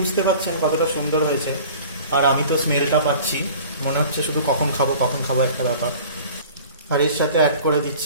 পারছেন কতটা সুন্দর হয়েছে, আর আমি তো স্মেলটা পাচ্ছি, মনে হচ্ছে শুধু কখন খাবো একটা ব্যাপার। আর এর সাথে অ্যাড করে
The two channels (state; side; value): inverted; both; correlation -0.44